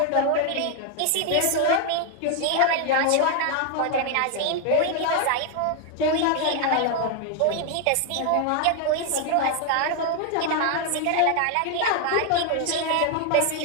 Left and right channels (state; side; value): different; both; correlation 0.00